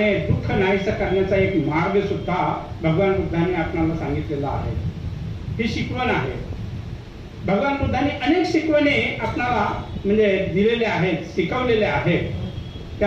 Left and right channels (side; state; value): both; identical; correlation 1.00